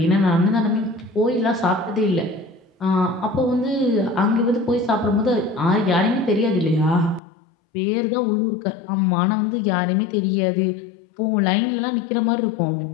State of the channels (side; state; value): right; drops out; at 7.2 s